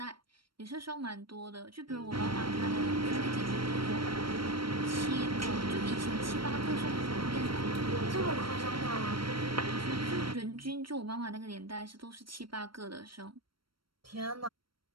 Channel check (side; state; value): left; late; 0.74 ms